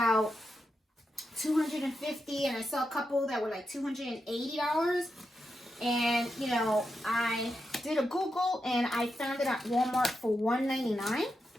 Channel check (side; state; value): both; normal; correlation 0.87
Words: $250, and I saw a couple that were like $280. And, you know, I did a Google, and I found it at Walmart for $199.